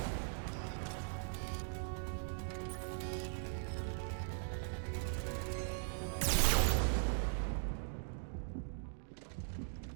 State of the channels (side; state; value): left; silent; digital silence